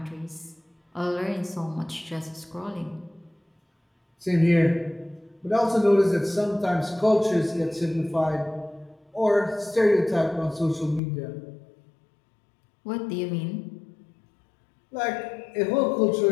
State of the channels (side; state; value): right; drops out; at 11.0 s